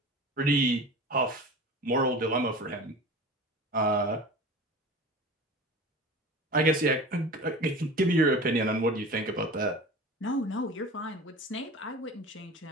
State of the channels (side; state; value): both; normal; correlation 0.36